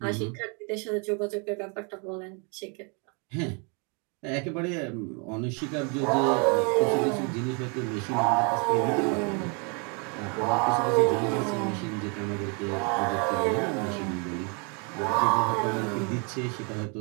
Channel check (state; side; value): quieter; left; 34.3 dB